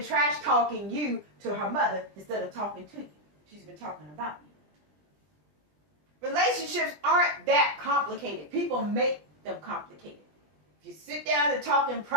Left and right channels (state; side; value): late; left; 20 ms